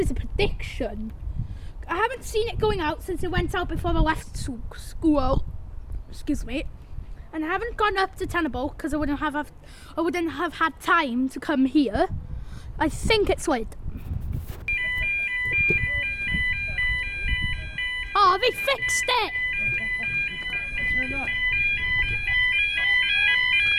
a prediction. I haven't seen it going out since it went out before I left school. Excuse me. And I haven't gone up to Tenable because I wouldn't have had time to come here. I think it's late. Oh, they fixed it!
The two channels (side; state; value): both; identical; correlation 1.00